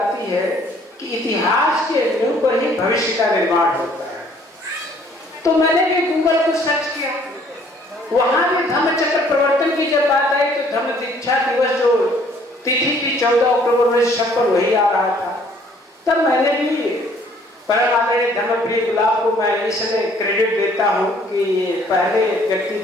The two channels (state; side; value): normal; both; correlation 0.60